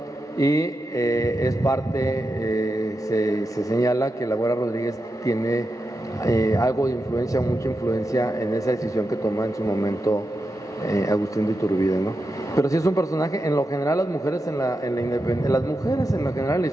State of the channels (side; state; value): both; normal; correlation 0.88